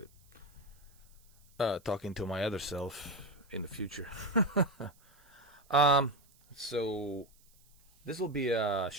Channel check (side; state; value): right; noise; hiss, 30 dB below the sound